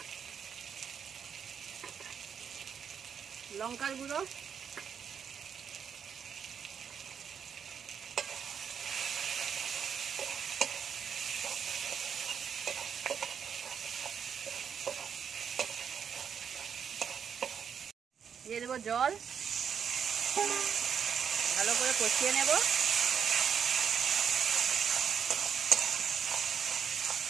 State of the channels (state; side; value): quieter; left; 7.4 dB